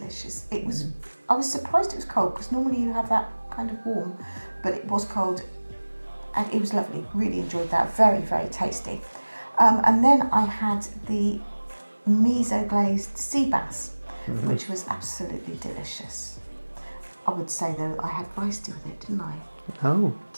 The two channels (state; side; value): inverted; both; correlation -1.00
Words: It was. I was surprised it was cold because normally you have that kind of warm, but it was cold, and it was lovely. Really enjoyed that. Very, very tasty. And then I had the miso glazed sea bass, which was absolutely delicious. I would say though I had rice with it, didn't I? No.